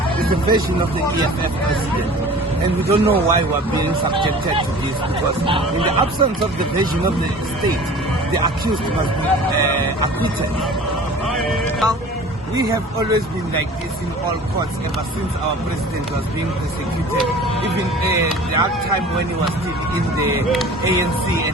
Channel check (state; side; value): normal; both; correlation 0.43